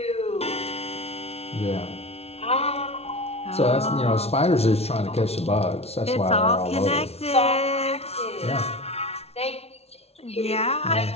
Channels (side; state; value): right; late; 0.30 ms